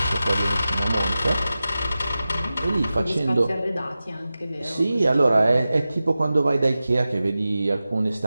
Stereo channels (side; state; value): both; inverted; correlation -0.95